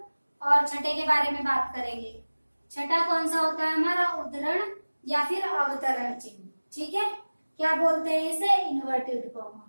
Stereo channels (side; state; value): both; inverted; correlation -1.00